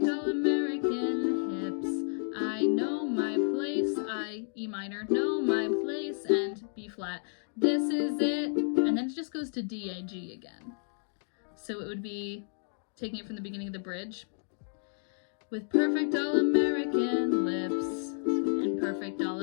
all-American hips. I know my place, I, E minor, know my place, and B flat. This is it. And then it just goes to D, A, G again. So it would be taking it from the beginning of the bridge. With perfect all-American lips and perfect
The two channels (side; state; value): right; silent; digital silence